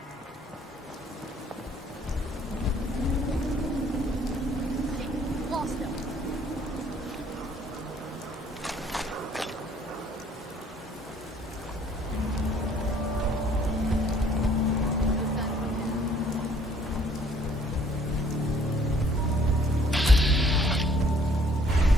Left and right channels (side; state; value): both; normal; correlation 0.60